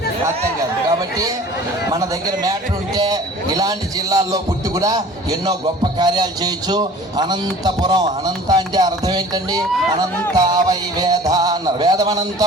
అర్థం కాదు. కాబట్టి మన దగ్గర మ్యాటర్ ఉంటే ఇలాంటి జిల్లాల్లో పుట్టి కూడా ఎన్నో గొప్ప కార్యాలు చేయొచ్చు. అనంతపురం, అనంత అంటే అర్థం ఏంటండి? అనంత వై వేద అన్నారు, వేదం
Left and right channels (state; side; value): normal; both; correlation 0.46